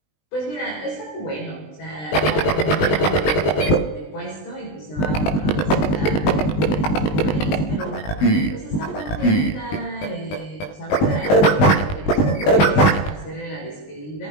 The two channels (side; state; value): right; late; 20 ms